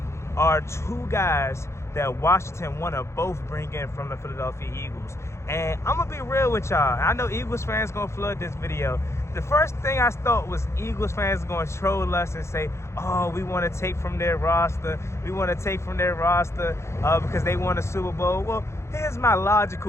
are 2 guys that Washington want to both bring in from the Philadelphia Eagles. And I'm gonna be real with y'all. I know Eagles fans gonna flood this video. The first thing I thought was Eagles fans going to troll us and say, oh, we want to take from their roster. We want to take from their roster because they won a Super Bowl. Well, here's my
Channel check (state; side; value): late; right; 0.13 ms